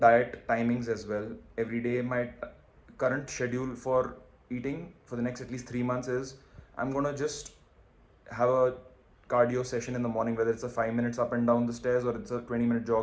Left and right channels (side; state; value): both; identical; correlation 1.00